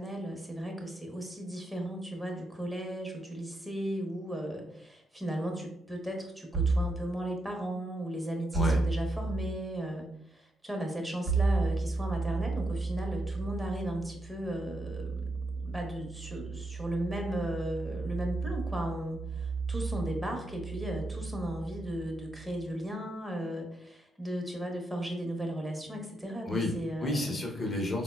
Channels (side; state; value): both; normal; correlation 0.82